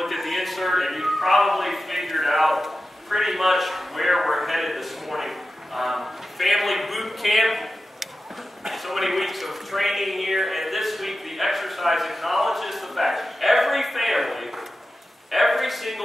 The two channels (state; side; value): normal; both; correlation 0.93